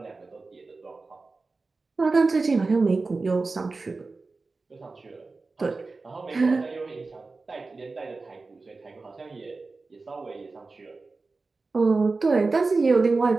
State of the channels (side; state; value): left; quieter; 3.8 dB